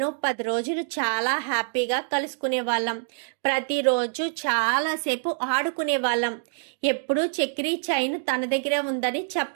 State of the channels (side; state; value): left; silent; digital silence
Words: 10 రోజులు చాలా హ్యాపీగా కలుసుకునేవాళ్ళం. ప్రతిరోజు చాలాసేపు ఆడుకునేవాళ్ళం. ఎప్పుడూ చక్రి చైన్ తన దగ్గరే ఉందని